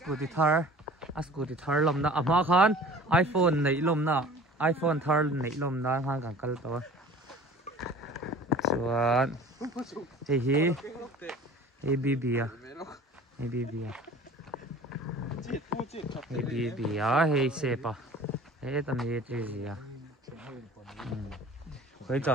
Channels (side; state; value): both; normal; correlation 0.45